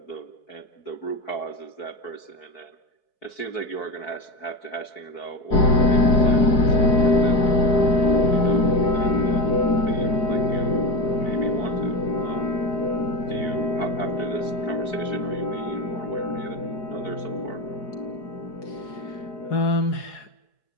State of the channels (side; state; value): right; late; 4.6 ms